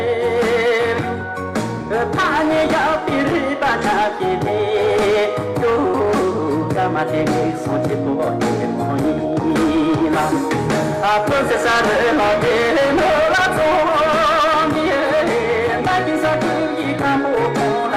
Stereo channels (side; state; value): both; identical; correlation 1.00